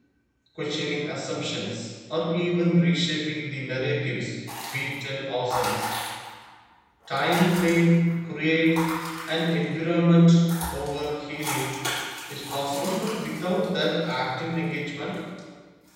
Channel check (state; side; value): identical; both; correlation 1.00